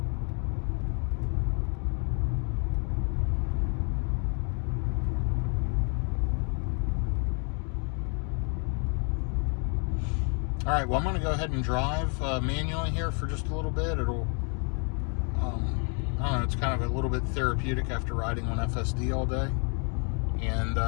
All right, well, I'm going to go ahead and drive manually here for just a little bit. It'll, I don't know, it's kind of a little bit therapeutic after riding on FSD all day. And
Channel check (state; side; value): quieter; right; 38.8 dB